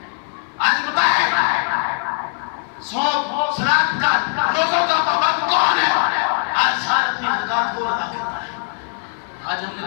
آج بتائیں صوم صلاۃ کا روزوں کا پابند کون ہے؟ آج سارا اپنی زکات کو ادا کرتا ہے۔ آج ہم نے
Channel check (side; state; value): right; silent; 55 dB below the other